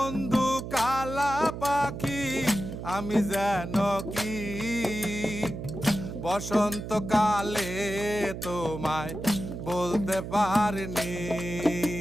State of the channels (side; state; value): right; noise; hum, 8 dB below the sound